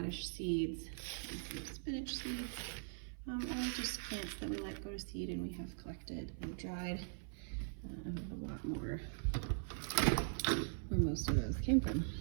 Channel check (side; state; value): left; silent; 50 dB below the other